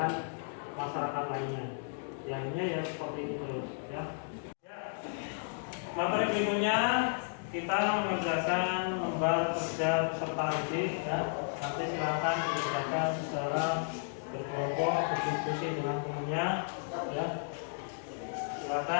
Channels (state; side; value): silent; right; digital silence